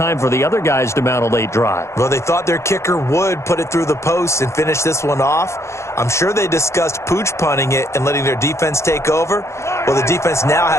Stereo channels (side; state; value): right; late; 0.13 ms